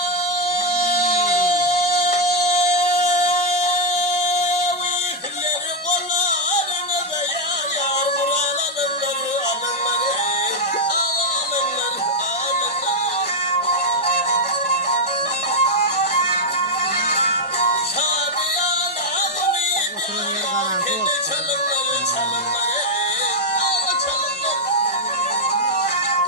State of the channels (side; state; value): both; normal; correlation 0.00